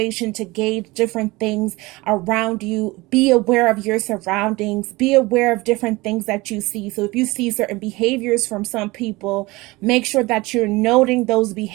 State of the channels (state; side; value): quieter; left; 21.9 dB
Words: to gauge different things around you. Be aware of your surroundings. Be aware of different things that you see. So if you see certain behaviors from some people, make sure that you're noting those